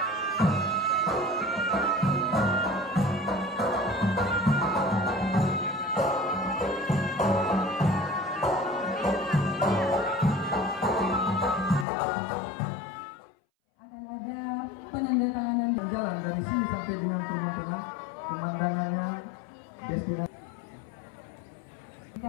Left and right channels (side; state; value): right; drops out; at 11.9 s